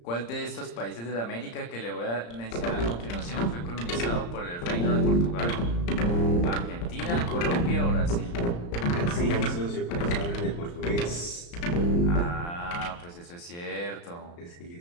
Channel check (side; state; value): right; late; 34 ms